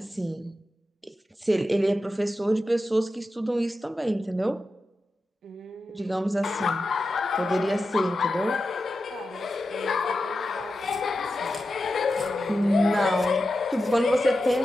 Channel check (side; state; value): both; normal; correlation 0.91